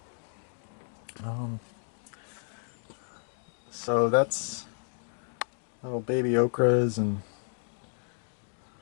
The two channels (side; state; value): right; silent; 56 dB below the other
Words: So that's little baby okras and